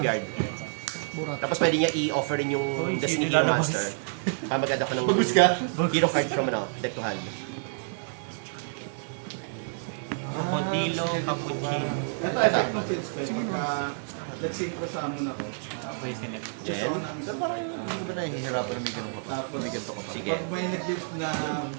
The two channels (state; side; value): silent; left; digital silence